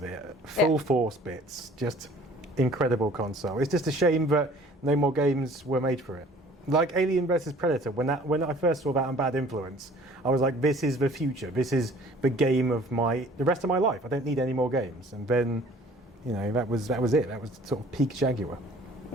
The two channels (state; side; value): normal; both; correlation 0.51